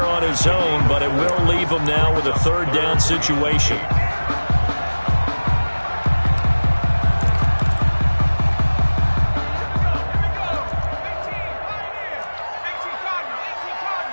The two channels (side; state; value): both; inverted; correlation -1.00